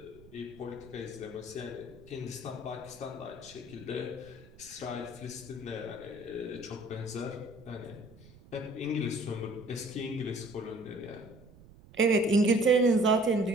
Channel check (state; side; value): noise; right; rumble, 22 dB below the sound